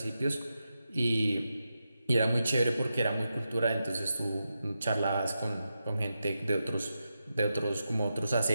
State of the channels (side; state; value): both; inverted; correlation -0.88